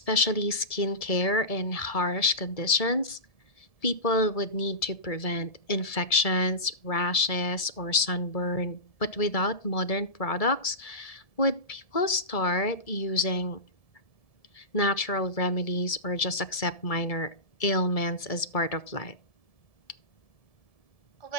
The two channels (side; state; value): right; late; 1.7 ms